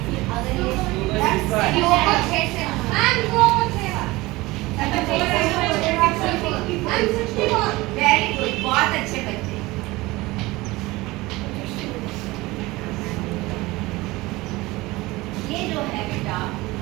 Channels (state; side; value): quieter; left; 20.6 dB